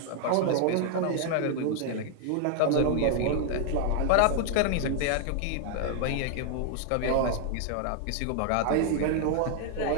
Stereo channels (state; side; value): different; both; correlation 0.00